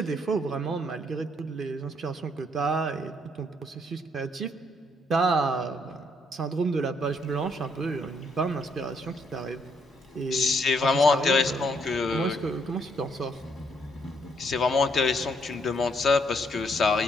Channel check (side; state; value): both; normal; correlation 0.71